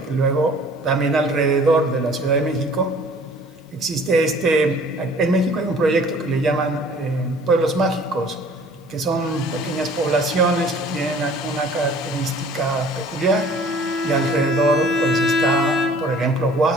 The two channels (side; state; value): both; normal; correlation 0.51